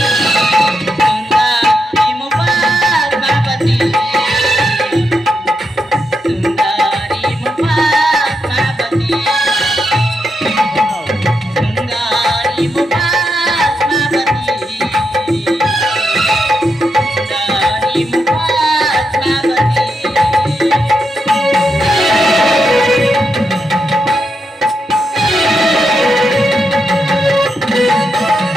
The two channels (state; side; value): normal; both; correlation 0.83